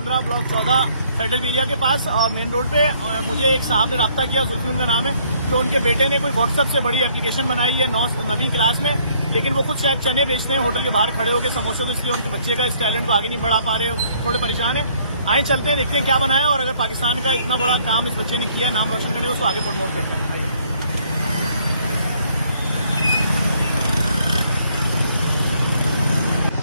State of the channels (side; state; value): both; inverted; correlation -0.64